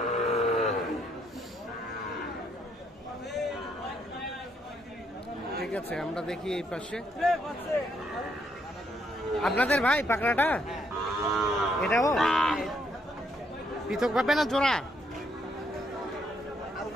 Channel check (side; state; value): both; normal; correlation 0.73